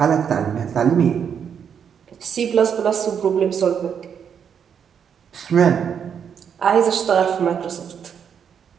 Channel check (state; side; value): quieter; left; 7.7 dB